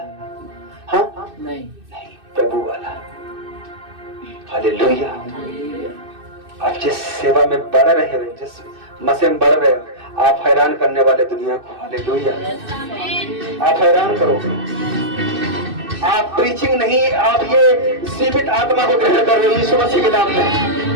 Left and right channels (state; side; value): late; left; 2.6 ms